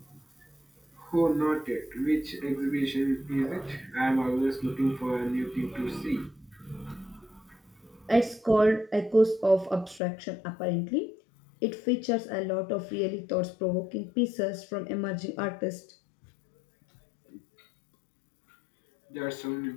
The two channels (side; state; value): right; drops out; at 10.0 s